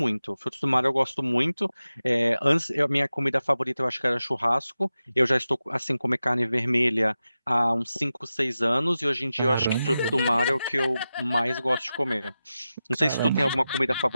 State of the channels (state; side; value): inverted; both; correlation -0.93